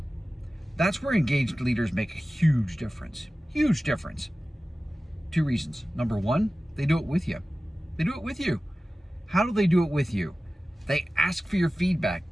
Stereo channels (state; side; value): normal; both; correlation 0.96